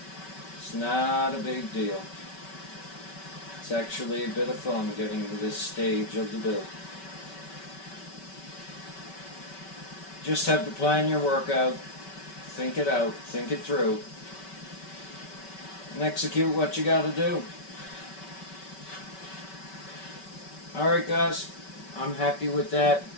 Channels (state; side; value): late; right; 5.2 ms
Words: it's not a big deal. It's actually a bit of fun getting to this stage of the build. Just have to plan your work out, think it out, think it through, and execute what you gotta do. Alright guys, I'm happy with that.